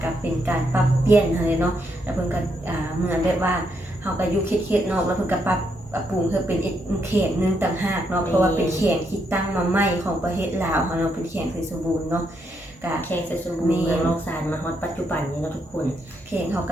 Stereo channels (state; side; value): normal; both; correlation 0.78